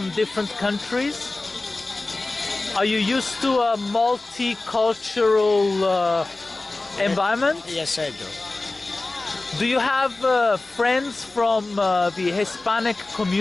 different countries? Are you used to a multicultural environment? Yes, I do. Do you have friends from the Hispanic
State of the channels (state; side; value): quieter; right; 3.2 dB